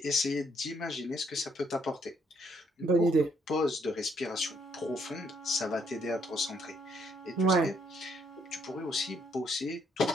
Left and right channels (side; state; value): both; normal; correlation 0.70